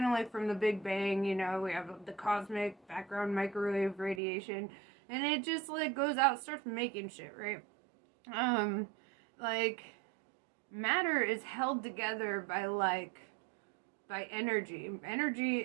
of like from the Big Bang, you know, we have the cosmic background microwave radiation, and it just, like, goes out, starts making shit, right? Like, matter is held together by energy. Energy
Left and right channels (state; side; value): drops out; left; at 4.2 s